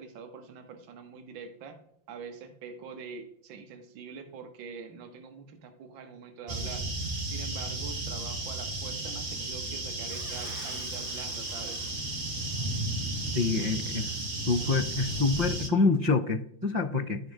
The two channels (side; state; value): left; late; 5.8 ms